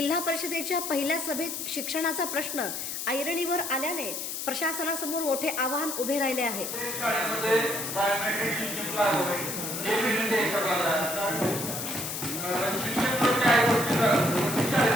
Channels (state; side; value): noise; left; hiss, 5 dB below the sound